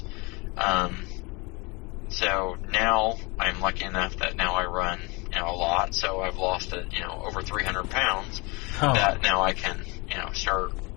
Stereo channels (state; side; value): quieter; right; 27.2 dB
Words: So now I'm lucky enough that now I run, a lot. So I've lost over 300 pounds. Oh. That now I can, start.